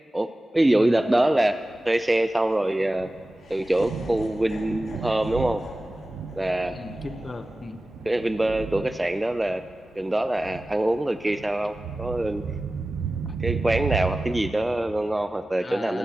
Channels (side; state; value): both; normal; correlation 0.96